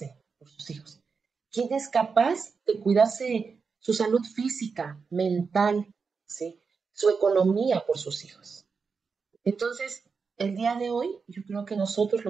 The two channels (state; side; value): quieter; left; 5.2 dB